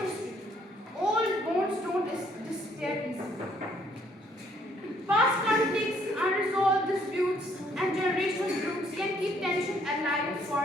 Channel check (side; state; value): both; normal; correlation 0.66